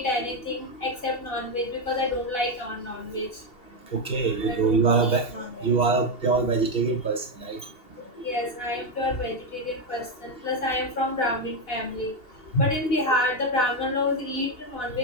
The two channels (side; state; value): right; late; 2.8 ms